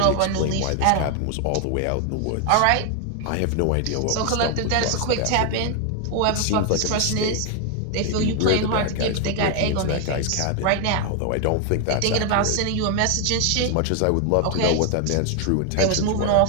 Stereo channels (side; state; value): both; different; correlation 0.00